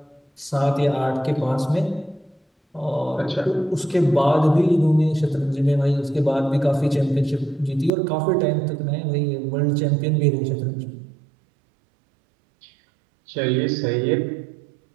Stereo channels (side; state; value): left; drops out; at 7.9 s